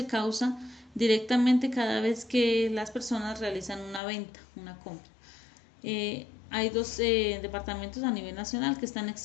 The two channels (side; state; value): right; drops out; at 4.0 s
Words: causa directamente cada vez que las personas realizan una venta, una compra. Hay dos departamentos a nivel nacional que están